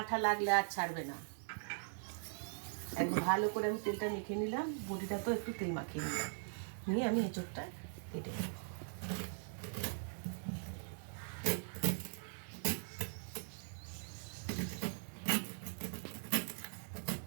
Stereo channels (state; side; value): silent; left; digital silence